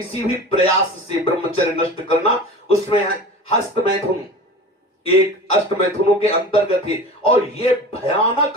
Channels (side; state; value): both; normal; correlation 0.35